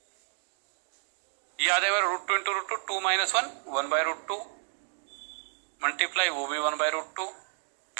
ये आ जाएगा √2 × √2, 2 - 1 1/√2, मल्टीप्लाई वो भी 1/√2,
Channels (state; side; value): silent; left; 57 dB below the other